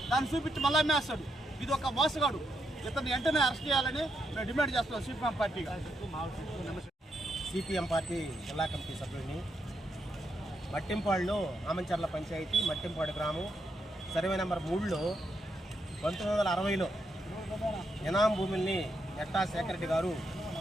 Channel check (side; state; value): both; normal; correlation 0.80